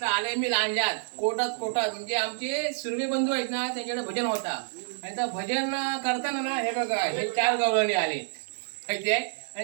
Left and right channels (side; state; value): left; silent; 58 dB below the other